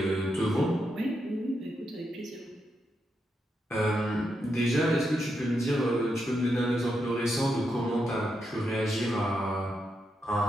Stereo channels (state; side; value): normal; both; correlation 0.83